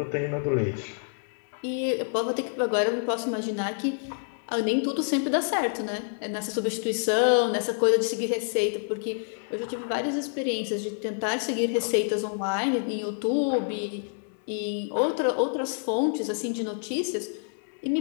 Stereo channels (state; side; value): silent; right; 60 dB below the other